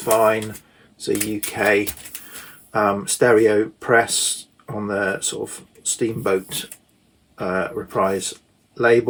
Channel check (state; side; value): identical; both; correlation 1.00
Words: It's a UK stereo press on the sort of Steamboat Reprise